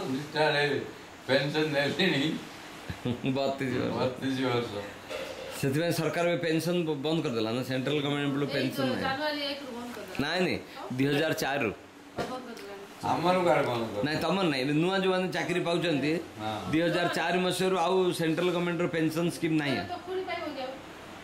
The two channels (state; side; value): identical; both; correlation 1.00